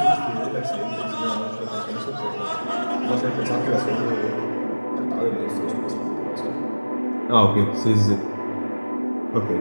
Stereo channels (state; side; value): inverted; both; correlation -1.00